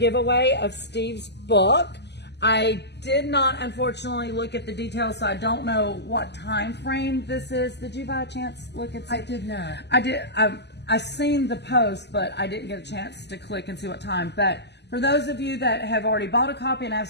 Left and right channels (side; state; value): right; late; 0.50 ms